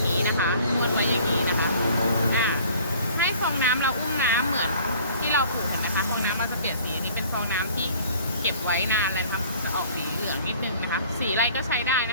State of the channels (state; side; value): inverted; both; correlation -0.52